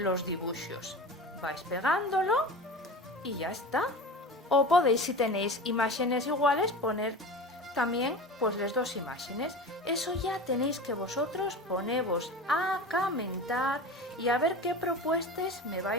dibuixos. Vais pegándolo y ya está. O podéis, si tenéis imágenes iguales, poner también pues las dos imágenes. Eso ya tenéis que vosotros ponevos a comentar y a ver qué propuestas me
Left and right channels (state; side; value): normal; both; correlation 0.31